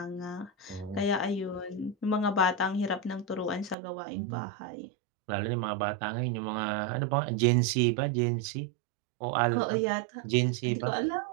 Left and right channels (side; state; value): left; drops out; at 3.8 s